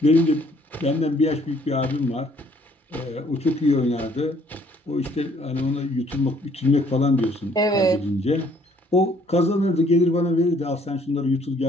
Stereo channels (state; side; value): normal; both; correlation 0.62